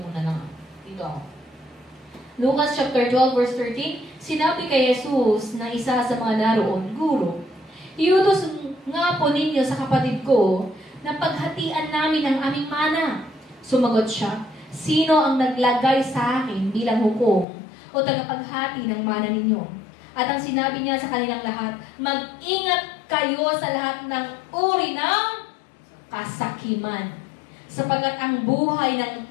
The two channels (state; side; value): drops out; right; at 17.4 s